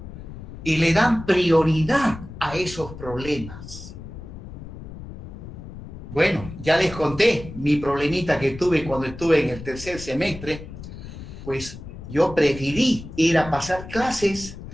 y le dan prioridad a esos problemas. Bueno, ya les conté mi problemita que tuve cuando estuve en el tercer semestre, pues yo preferí ir a pasar clases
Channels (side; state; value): left; noise; rumble, 13 dB below the sound